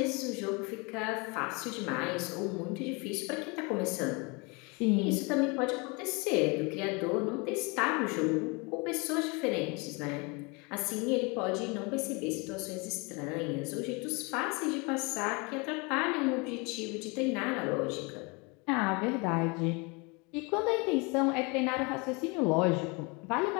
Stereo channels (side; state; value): right; quieter; 29.3 dB